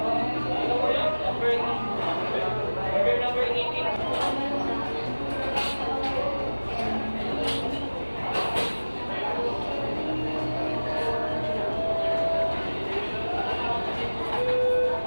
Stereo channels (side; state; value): both; inverted; correlation -1.00